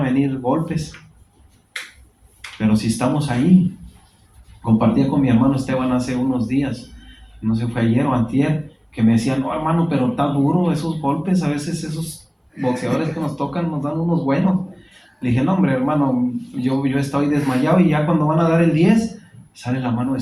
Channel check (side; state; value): both; identical; correlation 1.00